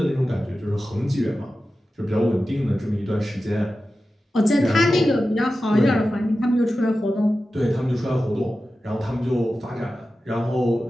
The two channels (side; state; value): both; normal; correlation 0.93